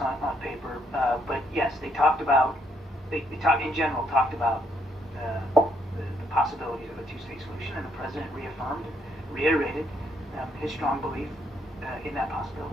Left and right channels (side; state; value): both; normal; correlation 0.72